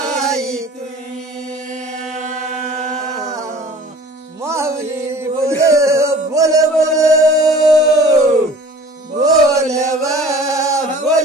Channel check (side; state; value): both; normal; correlation 0.46